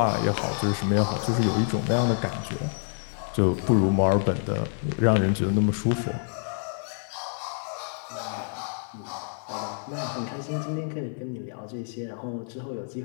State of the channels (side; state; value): right; silent; 60 dB below the other